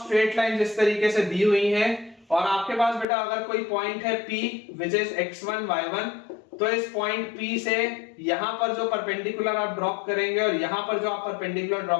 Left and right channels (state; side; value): drops out; right; at 3.1 s